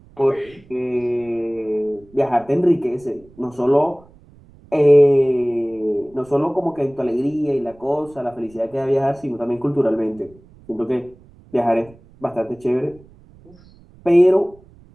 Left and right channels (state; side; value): noise; right; rumble, 26 dB below the sound